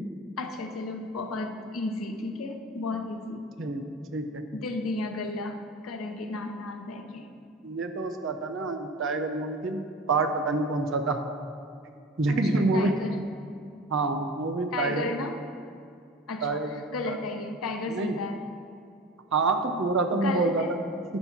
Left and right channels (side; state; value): both; normal; correlation 0.35